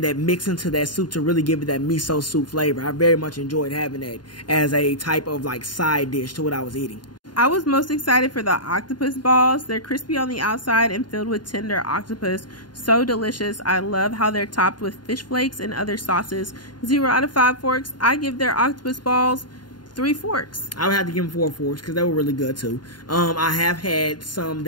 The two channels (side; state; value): right; late; 0.71 ms